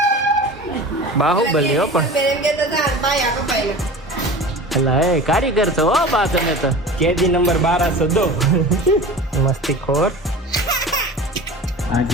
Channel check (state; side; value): normal; both; correlation 0.36